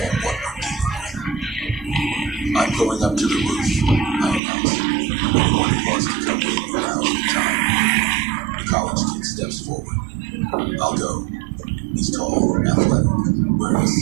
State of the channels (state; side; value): drops out; left; at 4.4 s